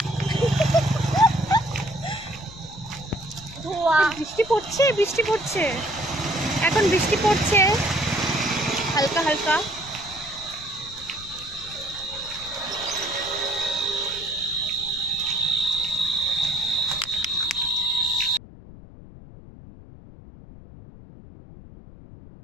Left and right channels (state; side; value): noise; left; rumble, 17 dB below the sound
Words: ধোয়া। বৃষ্টি পড়ছে, বৃষ্টি পড়ছে, এখন বৃষ্টি পড়ছে হালকা হালকা।